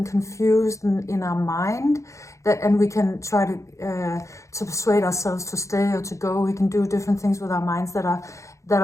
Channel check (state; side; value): late; right; 0.15 ms